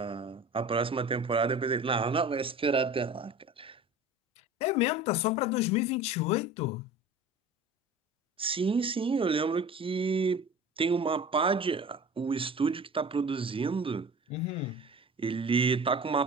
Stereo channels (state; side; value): normal; both; correlation 0.38